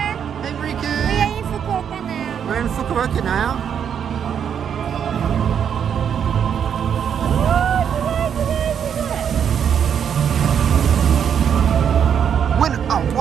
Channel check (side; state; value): left; quieter; 8.1 dB